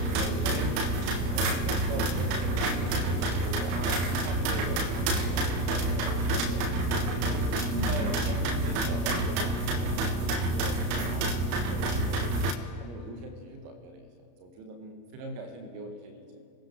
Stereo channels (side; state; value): left; late; 33 ms